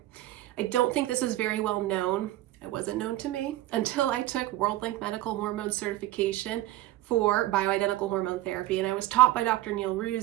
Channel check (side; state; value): left; quieter; 15.7 dB